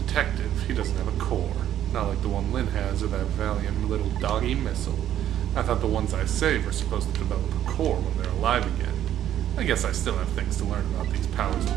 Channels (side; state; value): left; quieter; 11.3 dB